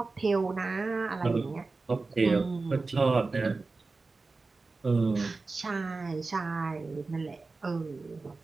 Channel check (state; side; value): quieter; left; 3.8 dB